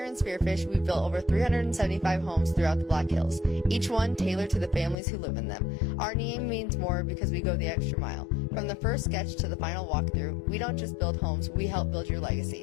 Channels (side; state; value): right; drops out; at 5.0 s